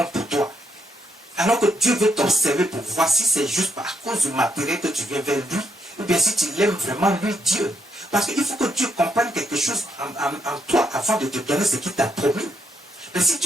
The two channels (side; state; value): both; normal; correlation 0.78